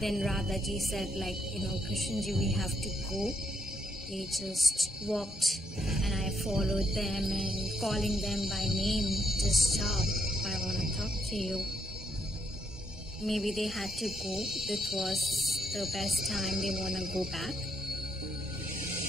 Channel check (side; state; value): both; normal; correlation 0.76